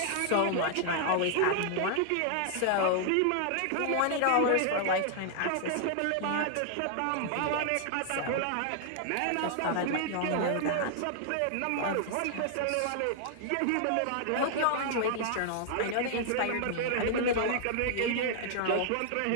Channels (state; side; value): different; both; correlation 0.00